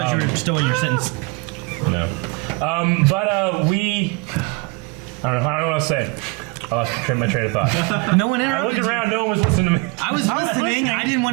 you were still in your sentence. No. But we, I don't know what to say. I lost my train of thought. No one I interrupted looked you. around, no one was listening to me. I was listening. I didn't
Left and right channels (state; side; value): quieter; left; 27.5 dB